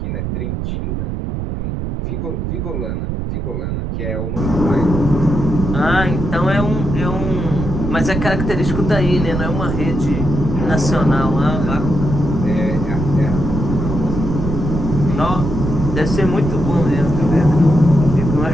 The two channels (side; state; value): right; noise; rumble, 3 dB below the sound